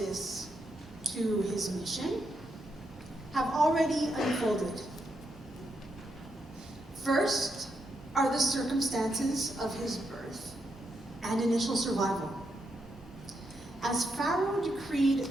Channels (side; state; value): both; normal; correlation 0.81